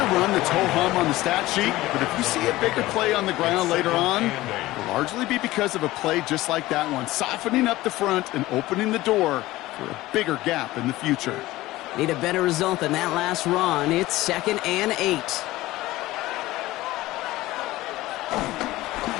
run that's ho-hum on the stat sheet, but if you see a bigger play on the ground later on, it'll largely be because of a play just like that one, softening up the front and opening the door for a bigger gap in the future. Need a better result than that last run. It's 2nd and 8.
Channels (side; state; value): right; quieter; 17.5 dB